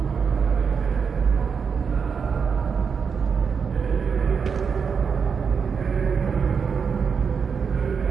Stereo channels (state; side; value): quieter; left; 6.1 dB